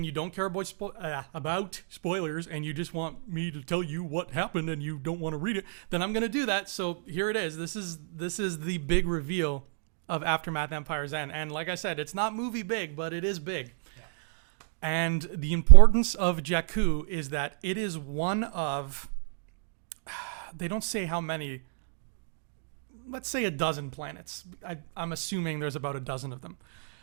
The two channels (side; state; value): left; silent; digital silence